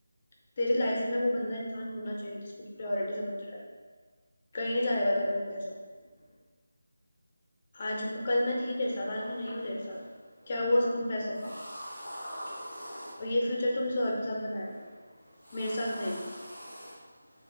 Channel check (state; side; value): inverted; both; correlation -0.93